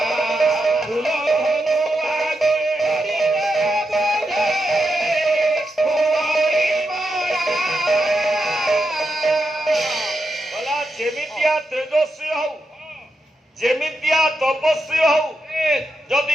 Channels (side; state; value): both; normal; correlation 0.85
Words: যেমিতিଆ ତପସ୍ୱୀ ହଉ ଯଦି